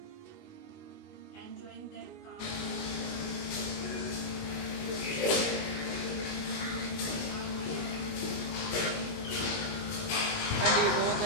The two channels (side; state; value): right; late; 19 ms